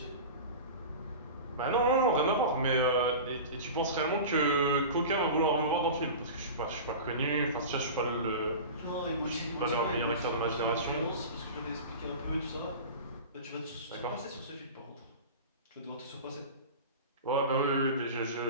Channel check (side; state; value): both; inverted; correlation -0.32